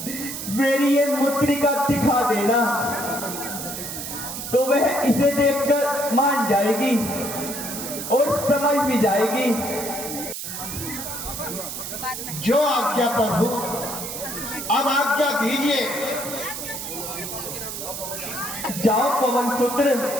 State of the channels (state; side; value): noise; right; hiss, 7 dB below the sound